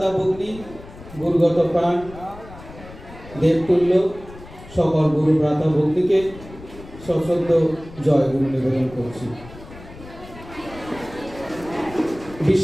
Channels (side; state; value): left; noise; rumble, 17 dB below the sound